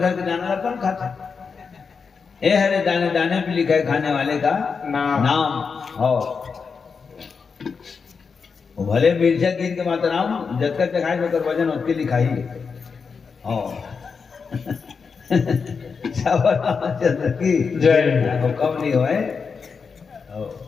के दाना ला खाते ए हरे दाने दाने पे लिखा है खाने वाले का नाम हो वो भले मिर्चा गिन के माता नाम जतकर चखाए होकर वजन उसके लिखा ही हो चंद्र की जय वो कम नहीं होए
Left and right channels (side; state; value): right; quieter; 5.5 dB